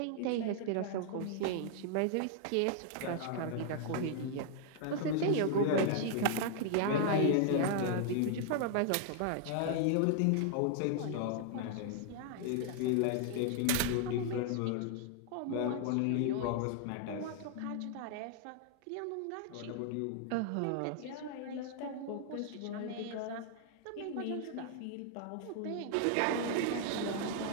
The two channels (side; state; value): both; different; correlation 0.00